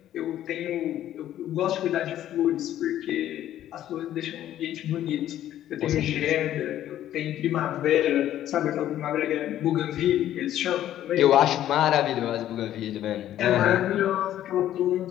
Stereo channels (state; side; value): quieter; right; 12.2 dB